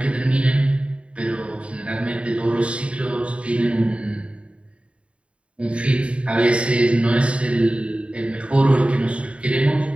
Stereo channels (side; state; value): left; late; 0.060 ms